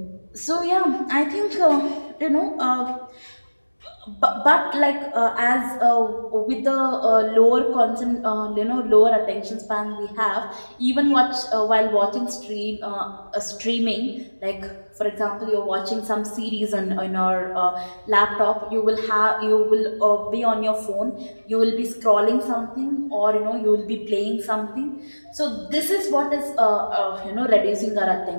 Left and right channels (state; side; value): inverted; both; correlation -1.00